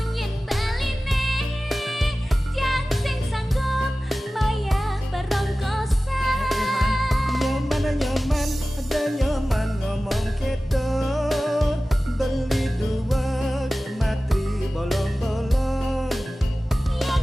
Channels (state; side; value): normal; both; correlation 0.96